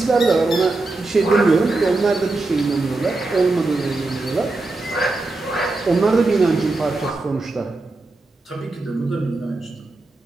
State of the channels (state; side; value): quieter; left; 3.2 dB